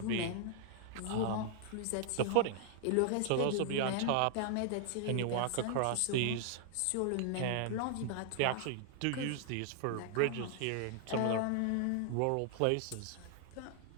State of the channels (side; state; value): both; different; correlation 0.00